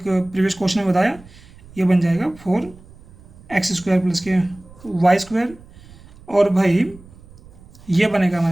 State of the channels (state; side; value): noise; right; rumble, 23 dB below the sound